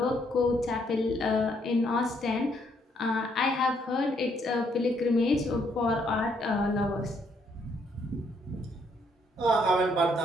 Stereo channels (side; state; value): both; normal; correlation 0.71